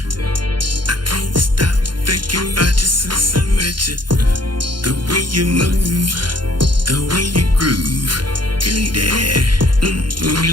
I can't stop thinking about you since I met you. The way you move, the way you groove, girl, yeah.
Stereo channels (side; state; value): left; late; 0.71 ms